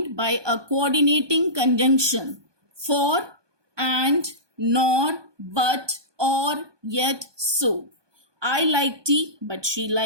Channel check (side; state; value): left; late; 1.2 ms